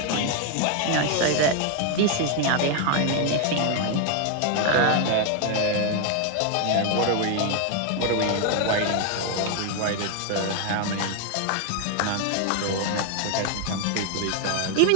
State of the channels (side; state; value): both; different; correlation 0.01